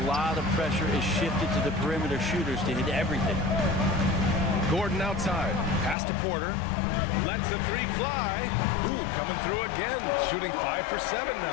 lot of pressure is shifted to the perimeter shooters to hit everything. Gordon outside. Pass to Porter. Lets the 3 fly. Ooh, coming through again. Shooting 5 for 7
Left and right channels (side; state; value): right; drops out; at 6.0 s